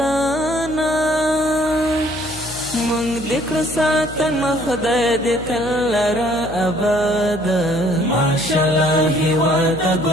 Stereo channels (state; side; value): noise; left; hum, 15 dB below the sound